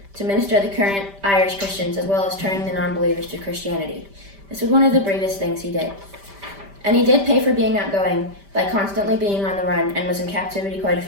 to minister the current Irish Christians as well as turning the non-believers to Christianity. This was one of the bravest things he did. And he did pay for being outgoing by constantly being on the run and was in captivity quite a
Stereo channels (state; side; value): late; left; 5.1 ms